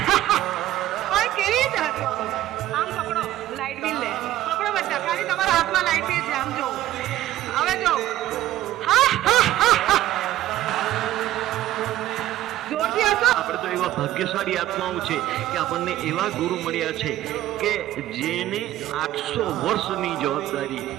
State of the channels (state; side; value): quieter; left; 14.1 dB